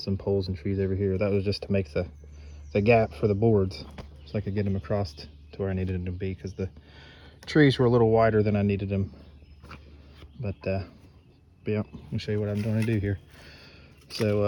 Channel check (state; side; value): identical; both; correlation 1.00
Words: poles and trees over here. That was just to make the gap for the boards so I could get them across to where I needed them to be, because the trees were a little wider than I needed them. But yeah, I'll show you what I'm going to do here.